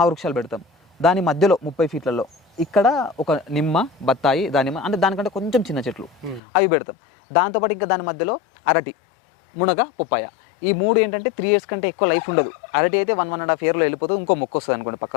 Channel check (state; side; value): drops out; right; at 6.4 s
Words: పెడతాం. దాని మధ్యలో 30 feetలలో ఇక్కడ ఒక నిమ్మ, బత్తాయి, దానిమ్మ, అంటే దానికంటే కొంచెం చిన్న చెట్లు అవి పెడతాం. దాంతోపాటు ఇంకా దాని మధ్యలో అరటి, మునగ, పొప్పాయ, ఈ 3 ఏంటంటే 3 years కంటే ఎక్కువ లైఫ్ ఉండదు. అరటి అయితే 1.5 yearలో వెళ్ళిపోతుంది, ఇంకో మొక్క వస్తుంది అనుకోండి